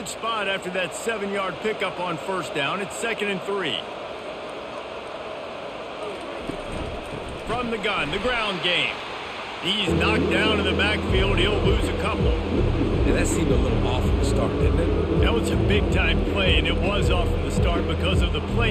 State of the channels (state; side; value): identical; both; correlation 1.00